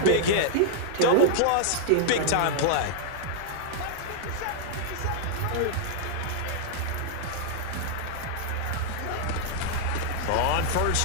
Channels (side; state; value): both; different; correlation -0.01